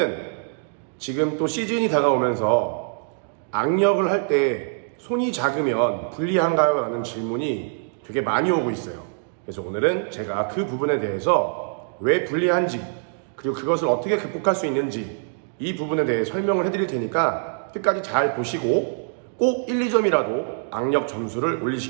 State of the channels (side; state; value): left; silent; digital silence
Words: 지금 또 시즌이 다가오면서 악력을 할 때 손이 작으면 불리한가요? 라는 질문이 되게 많이 오고 있어요. 그래서 오늘은 제가 그 부분에 대해서 왜 불리한지, 그리고 그것을 어떻게 극복할 수 있는지 이 부분에 대해 설명을 해드릴 테니까 끝까지 잘 보시고 꼭 1, 2점이라도 악력 점수를